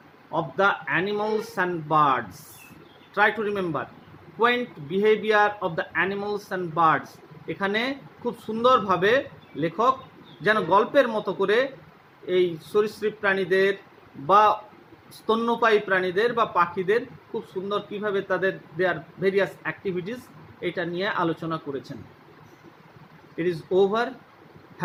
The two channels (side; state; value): both; identical; correlation 1.00